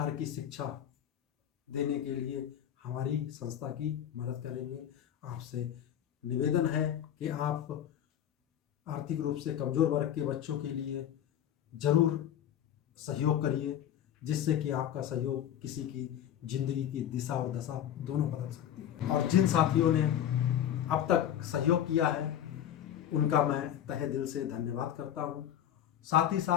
की शिक्षा देने के लिए हमारी संस्था की मदद करेंगे। आपसे निवेदन है कि आप आर्थिक रूप से कमजोर वर्ग के बच्चों के लिए जरूर सहयोग करिए, जिससे कि आपका सहयोग किसी की जिंदगी की दिशा और दशा दोनों बदल सकती है। और जिन साथियों ने अब तक सहयोग किया है उनका मैं तहे दिल से धन्यवाद करता हूँ। साथ ही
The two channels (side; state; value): right; quieter; 10.4 dB